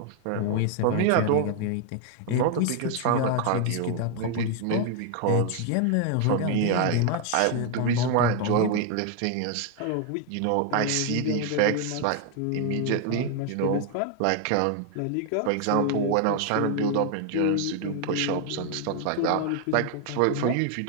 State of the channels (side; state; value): both; different; correlation 0.00